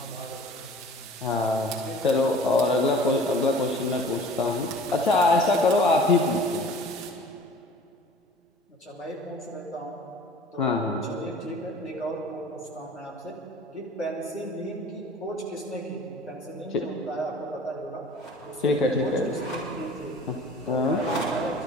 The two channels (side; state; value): both; normal; correlation 0.46